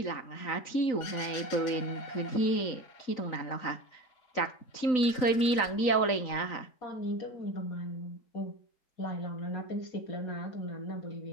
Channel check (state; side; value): late; right; 3.9 ms